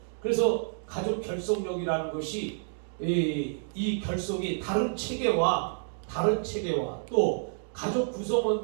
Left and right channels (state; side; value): silent; left; digital silence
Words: 그래서 가족 결속력이라는 것이 이 결속이 다른 체계와 또 가족